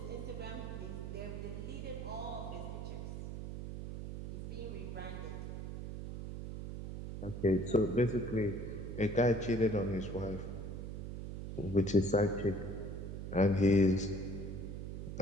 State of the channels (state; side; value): noise; right; hum, 6 dB below the sound